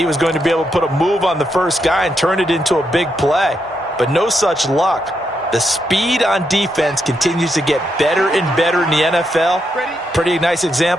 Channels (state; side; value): normal; both; correlation 0.81